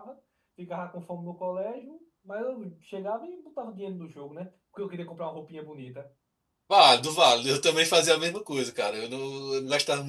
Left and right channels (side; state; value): both; identical; correlation 1.00